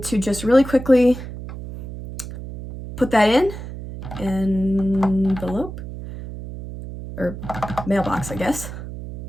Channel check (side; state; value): right; noise; hum, 10 dB below the sound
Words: to just really quickly put that in envelope, or mailbox, I guess,